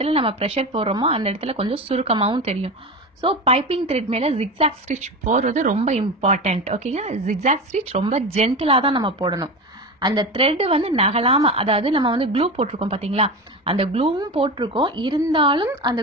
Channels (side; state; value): both; normal; correlation 0.24